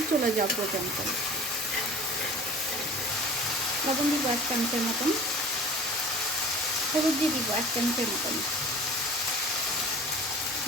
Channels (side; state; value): both; normal; correlation 0.43